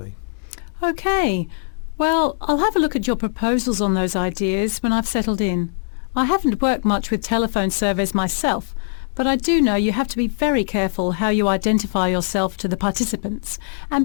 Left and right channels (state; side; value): silent; right; digital silence